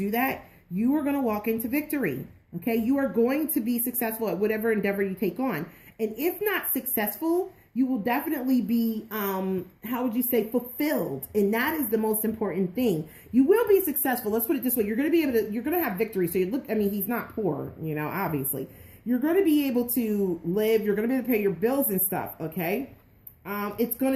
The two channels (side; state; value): both; identical; correlation 1.00